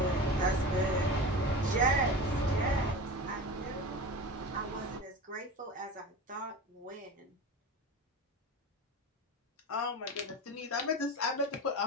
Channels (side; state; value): both; normal; correlation 0.30